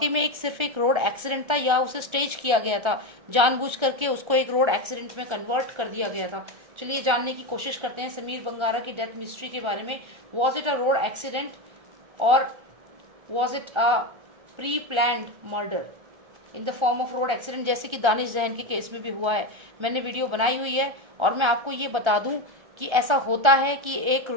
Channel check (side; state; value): left; late; 1.3 ms